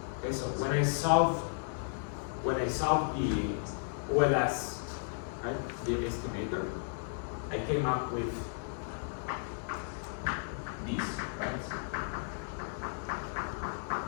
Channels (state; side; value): silent; right; 55 dB below the other